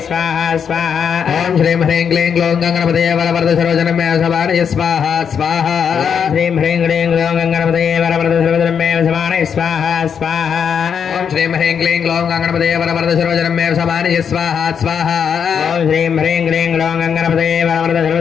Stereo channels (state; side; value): quieter; right; 7.3 dB